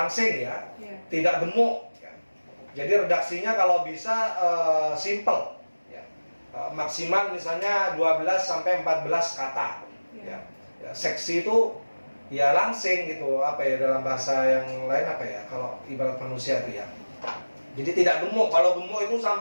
ya, tidak gemuk. Ya. Jadi redaksinya kalau bisa simple, ya. Maksimal misalnya 12 sampai 14 kata. Ya. Ya, seksi itu ya langsing gitu, apa ya dalam bahasa yang lain apa ya, kalau ibarat manusia itu ya. Jadi tidak gemuk. Kalau gemuk itu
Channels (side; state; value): both; inverted; correlation -1.00